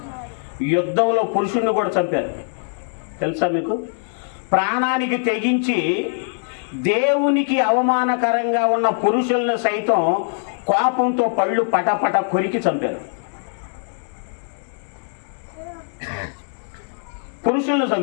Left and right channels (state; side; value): silent; right; digital silence